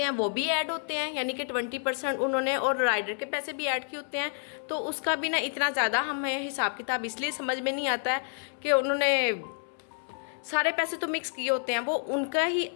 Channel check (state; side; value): silent; right; 58 dB below the other